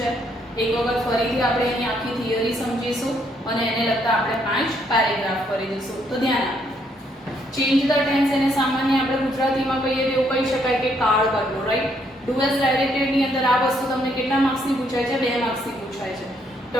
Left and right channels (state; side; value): normal; both; correlation 0.71